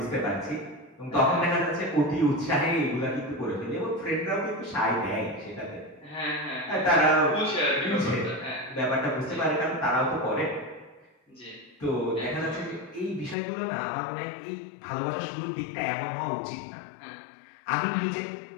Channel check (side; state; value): right; drops out; at 13.4 s